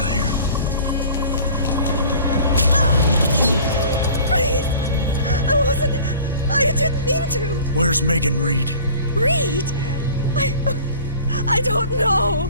here. Please! I didn't mean to! Where's Megan Reed? Reed! I don't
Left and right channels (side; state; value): both; inverted; correlation -0.45